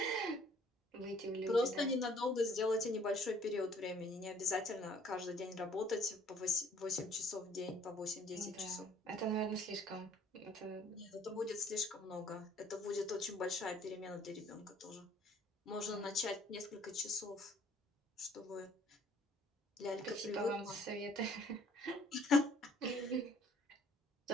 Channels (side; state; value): both; normal; correlation 0.58